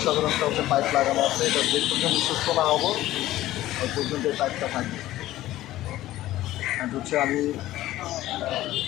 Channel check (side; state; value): right; quieter; 15.2 dB